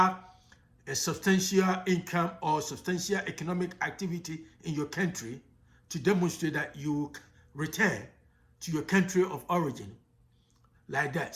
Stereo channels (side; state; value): both; identical; correlation 1.00